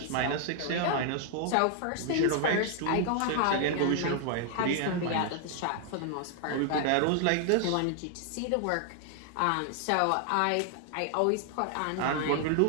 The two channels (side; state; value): both; different; correlation 0.00